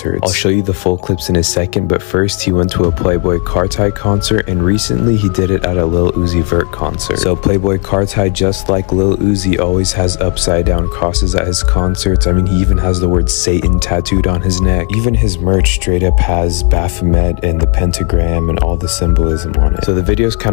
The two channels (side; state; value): right; quieter; 39.7 dB